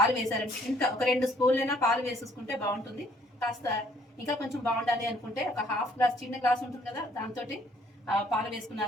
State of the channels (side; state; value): both; normal; correlation 0.63